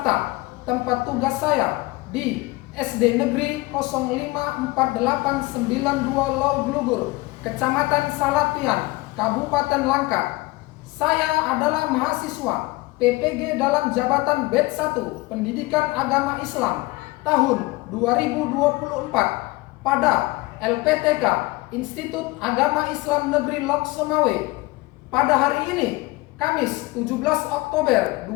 tempat tugas saya di SD Negeri 054892 Lauglugur, Kecamatan Salapian, Kabupaten Langkat. Saya adalah mahasiswa PPG dalam jabatan Batch 1 Pendidikan Agama Islam tahun 2024 pada LPTK Institut Agama Islam Negeri Lok Semawe. Pada hari ini, Kamis 17 Oktober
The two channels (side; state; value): right; quieter; 22.2 dB